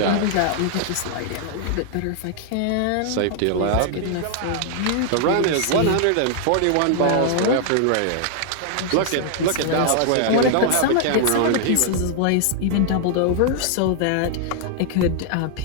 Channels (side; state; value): both; different; correlation 0.00